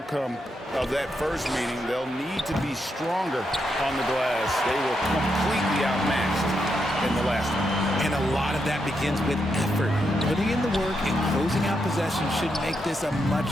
of that first meeting, they'll need to be stronger on the glass. They were completely outmatched in the last one. And a lot of that begins with effort. Putting in the work and closing out possession should make this a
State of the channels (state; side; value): normal; both; correlation 0.82